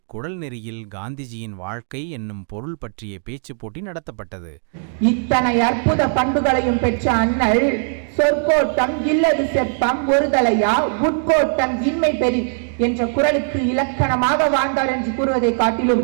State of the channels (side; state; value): left; silent; digital silence